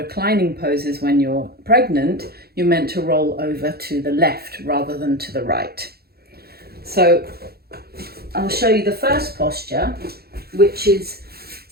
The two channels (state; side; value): late; left; 0.46 ms